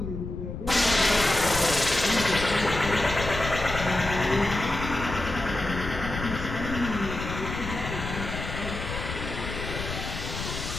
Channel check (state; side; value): noise; left; rumble, 7 dB below the sound